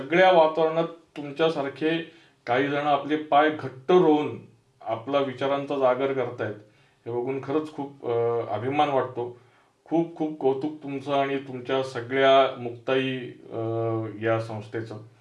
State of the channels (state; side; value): identical; both; correlation 1.00